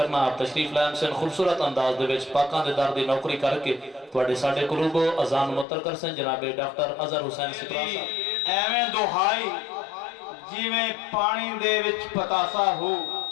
आप तशरीफ लाइन से खूबसूरत अंदाज दे विच पाकां दे दर दी नौकरी करके तुहाडे साडे कुलूबो अजान मुतर कर सन जनाबे डॉक्टर अजहर हुसैन सिपरा साहब। एवें दुहाई जिवें पानी दे विच पतासा हो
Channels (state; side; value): drops out; right; at 5.7 s